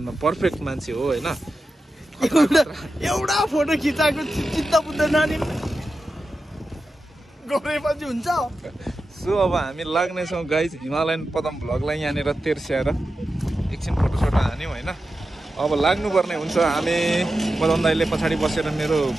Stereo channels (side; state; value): both; normal; correlation 0.91